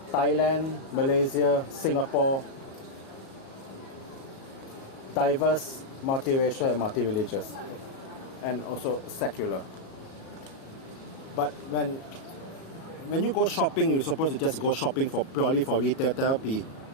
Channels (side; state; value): right; late; 37 ms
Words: Thailand, Malaysia, Singapore, diverse, multiracial, and multi-religious, and also secular. But when you go shopping, you're supposed to just go shopping purely for retail therapy.